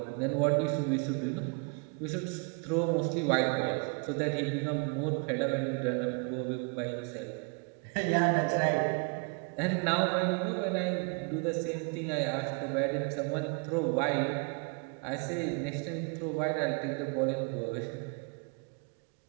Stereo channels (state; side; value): quieter; left; 35.2 dB